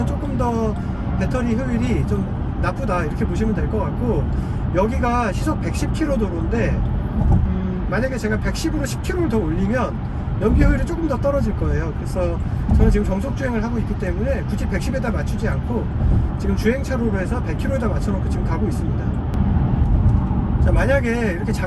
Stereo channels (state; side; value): identical; both; correlation 1.00